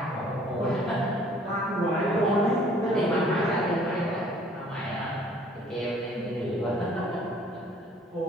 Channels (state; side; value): normal; both; correlation 0.57